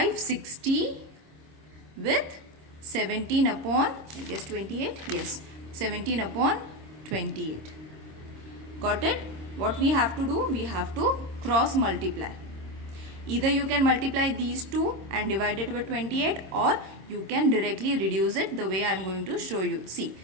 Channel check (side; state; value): left; late; 26 ms